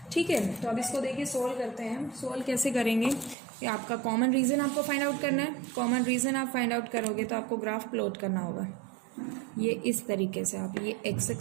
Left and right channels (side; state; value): left; drops out; at 3.4 s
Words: ठीक है, तो अब इसको देखिए सोल्व करते हैं। सोल्व कैसे करेंगे, कि आपका कॉमन रीजन आपको फाइंड आउट करना है। कॉमन रीजन आप फाइंड आउट करोगे तो आपको ग्राफ प्लॉट करना होगा। ये इस तरीके से आप, ये x